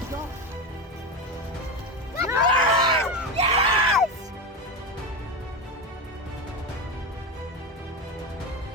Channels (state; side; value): normal; both; correlation 0.18